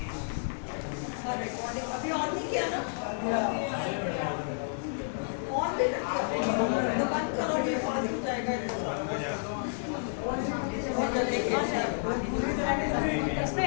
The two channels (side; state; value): right; silent; 57 dB below the other